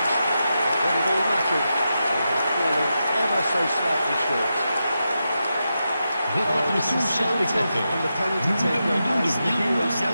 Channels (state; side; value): inverted; both; correlation -0.88